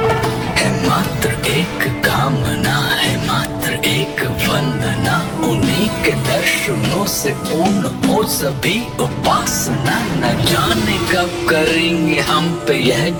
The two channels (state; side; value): identical; both; correlation 1.00